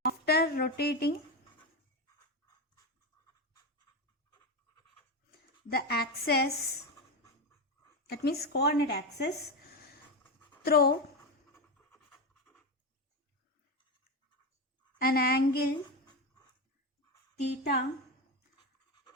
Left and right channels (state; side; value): normal; both; correlation 0.15